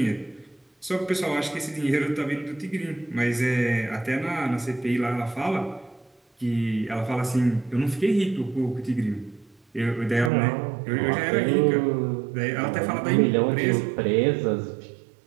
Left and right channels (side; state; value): left; drops out; at 10.3 s